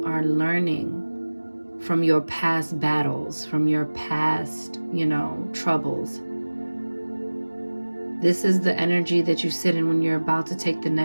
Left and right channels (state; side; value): inverted; both; correlation -1.00